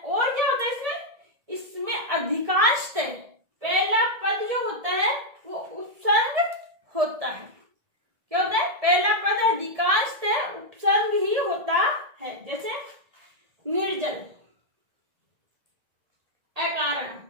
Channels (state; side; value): late; left; 1.6 ms